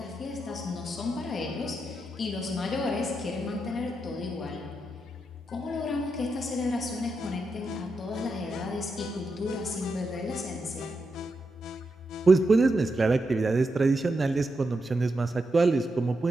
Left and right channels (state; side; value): normal; both; correlation 0.85